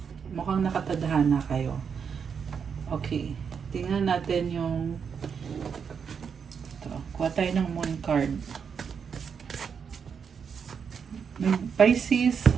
Mukhang nakatadhana kayo. Okay, tingnan natin yung ito. Kuha tayo ng moon card. Pisces,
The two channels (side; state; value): left; quieter; 6.6 dB